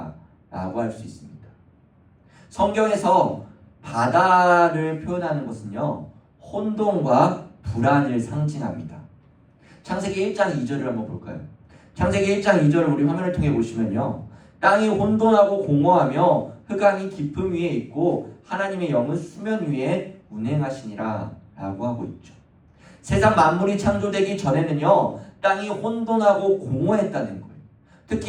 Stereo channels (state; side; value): identical; both; correlation 1.00